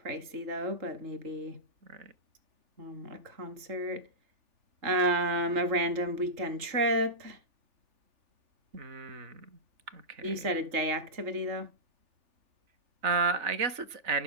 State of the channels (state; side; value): late; left; 3.4 ms